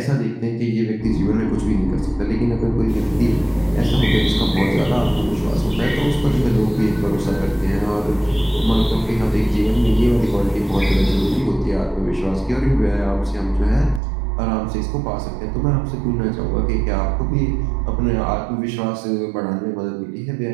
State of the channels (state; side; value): drops out; left; at 14.0 s